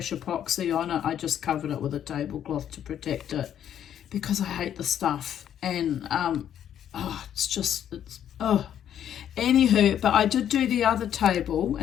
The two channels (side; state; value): right; quieter; 10.0 dB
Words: epoxy on it. I just covered it with a tablecloth to protect it because I hate the stuff. And anywho, but I did do the other table